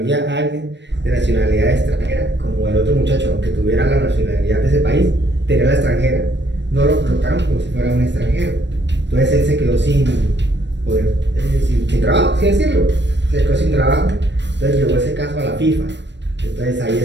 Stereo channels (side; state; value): left; late; 0.52 ms